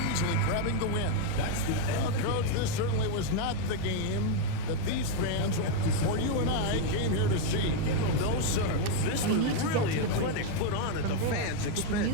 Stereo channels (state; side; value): different; both; correlation 0.01